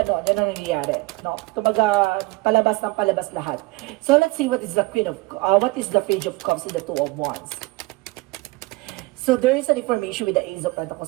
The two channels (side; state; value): left; quieter; 23.2 dB